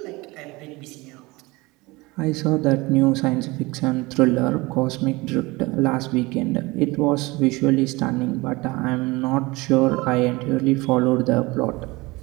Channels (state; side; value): quieter; left; 22.8 dB